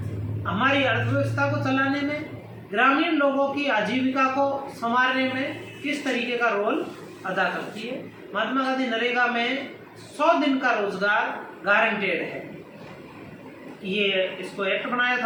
हमारी अर्थव्यवस्था को चलाने में, ग्रामीण लोगों की आजीविका को संवारने में किस तरीके का रोल अदा करती है। महात्मा गांधी नरेगा में 100 दिन का रोजगार गारंटेड है। ये इसको एक्ट बनाया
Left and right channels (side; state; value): both; identical; correlation 1.00